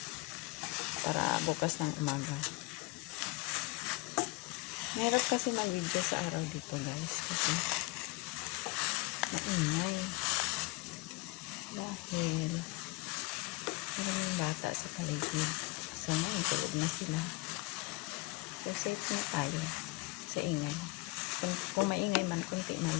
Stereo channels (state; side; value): quieter; right; 23.9 dB